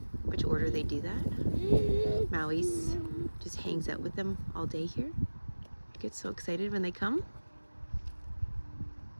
which order they do that. Maui's just hangs out with them all day here. Gets so excited when they come.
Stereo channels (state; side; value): inverted; both; correlation -1.00